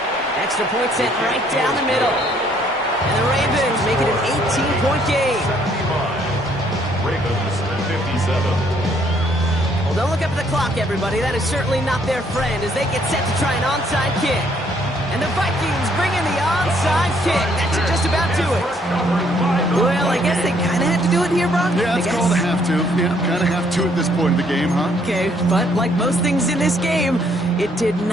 Extra point sent right down the middle. And the Ravens make it an 18-point game. 75. Ravens 57. Well, don't look up at the clock, everybody. That is certainly not their friend as they get set to try an onside kick. And the Vikings bring in the onside kick. That should just about do it. Well, I guess they kind of had to do it here, Brock. Yeah, it's called a have to. Yeah, kind of have to at this point in the game, huh? Okay, but like most things in this game, it did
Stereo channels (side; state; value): both; normal; correlation 0.66